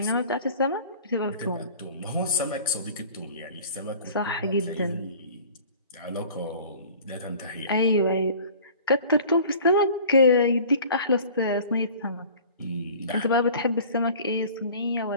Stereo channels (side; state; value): both; inverted; correlation -0.45